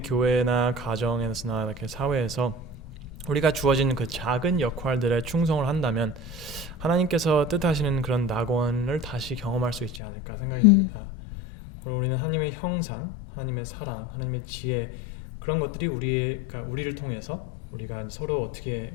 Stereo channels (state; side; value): drops out; right; at 10.0 s